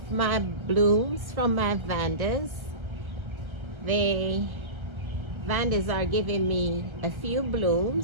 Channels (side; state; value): left; late; 1.5 ms